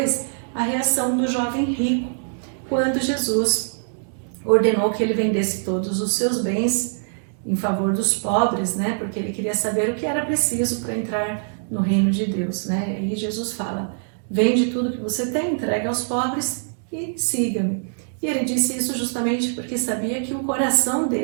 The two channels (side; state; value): left; silent; digital silence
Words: a reação do jovem rico, quando Jesus ordenou que ele vendesse todos os seus bens em favor dos pobres, né, porque ele queria saber o que era preciso para entrar no reino de Deus, né, e Jesus fala, vende tudo que você tem, entrega aos pobres e siga-me. E ele disse isso justamente porque sabia que o coração